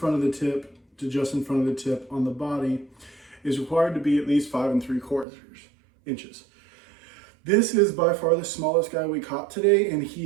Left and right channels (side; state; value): left; drops out; at 5.2 s